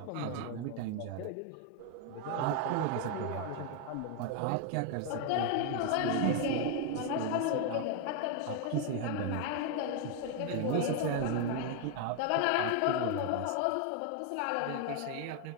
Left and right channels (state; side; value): different; both; correlation 0.01